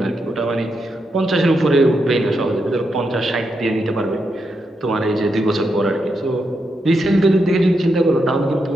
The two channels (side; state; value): both; normal; correlation 0.83